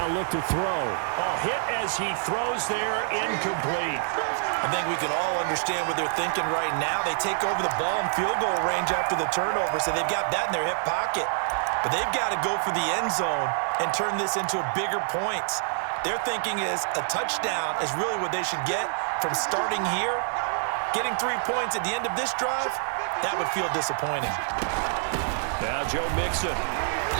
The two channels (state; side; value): silent; left; 60 dB below the other